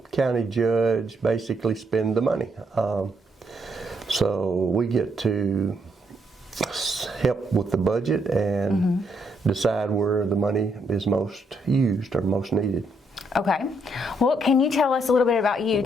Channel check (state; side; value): normal; both; correlation 0.75